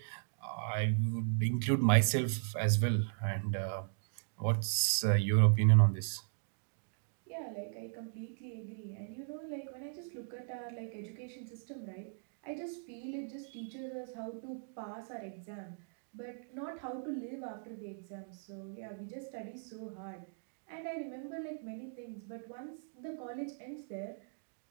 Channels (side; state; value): left; silent; digital silence